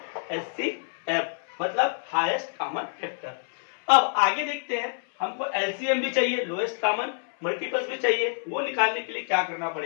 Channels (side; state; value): right; silent; 60 dB below the other